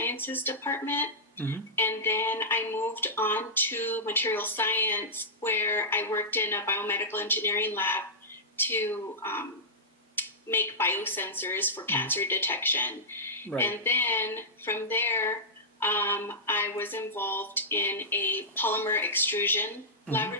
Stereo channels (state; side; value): normal; both; correlation -0.13